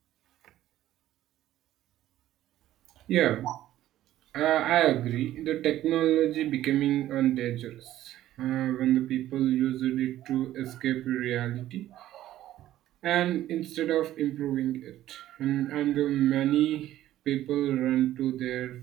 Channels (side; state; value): left; quieter; 13.6 dB